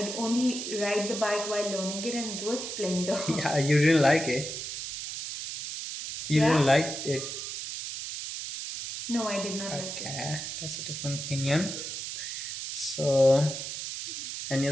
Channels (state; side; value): noise; right; hiss, 6 dB below the sound